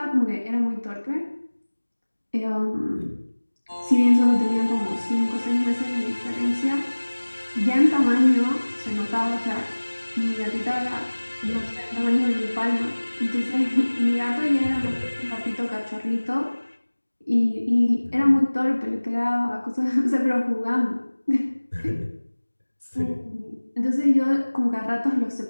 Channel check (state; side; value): inverted; both; correlation -1.00